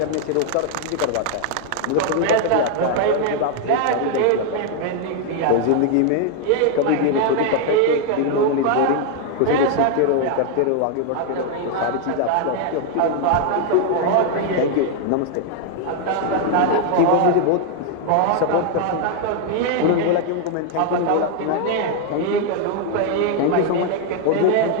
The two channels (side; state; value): both; different; correlation 0.00